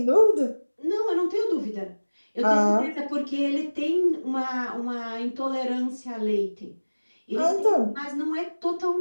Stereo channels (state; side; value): inverted; both; correlation -1.00